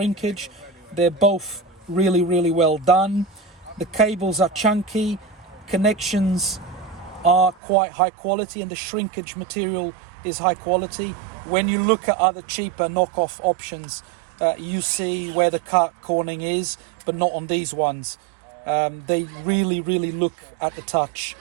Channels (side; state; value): left; drops out; at 7.6 s